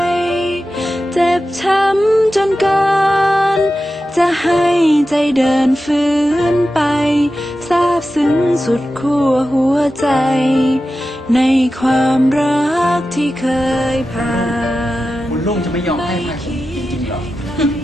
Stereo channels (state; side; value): normal; both; correlation 0.92